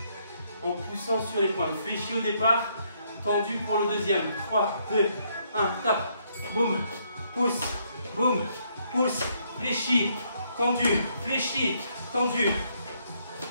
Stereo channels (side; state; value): both; inverted; correlation -0.72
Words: En poussant sur les pointes. Fléchis au départ, tendu pour le deuxième. 3, 2, 1, tape. Boum, pousse, boum, pousse, fléchis, tendu, fléchis, tendu.